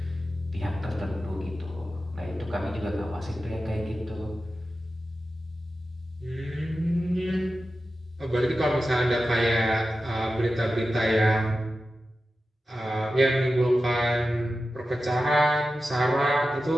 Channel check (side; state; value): both; normal; correlation 0.93